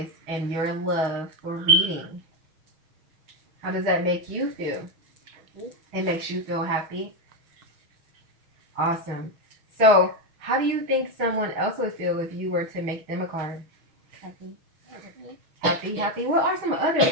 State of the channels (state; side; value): late; left; 6.3 ms